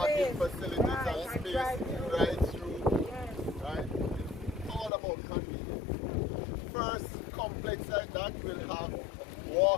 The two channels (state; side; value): drops out; right; at 4.9 s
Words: facilities and space right through. Right? It's all about convenience. First complex like that will have